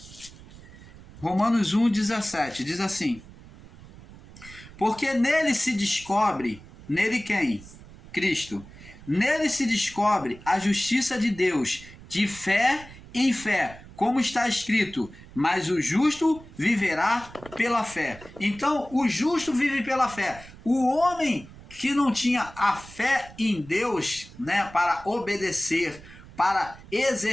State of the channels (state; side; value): noise; right; rumble, 19 dB below the sound